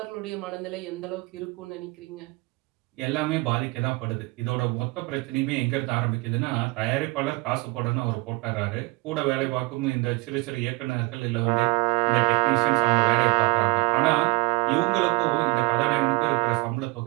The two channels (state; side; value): quieter; left; 25.0 dB